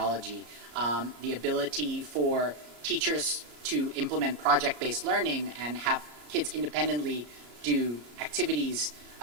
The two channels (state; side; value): late; left; 34 ms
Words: The ability for teachers to implement project-based learning and have kids independently do activities